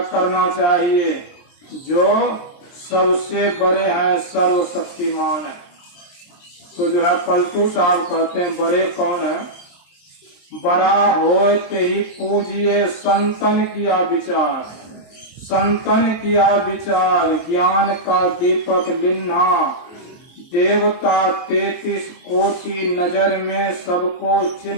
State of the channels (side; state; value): right; late; 23 ms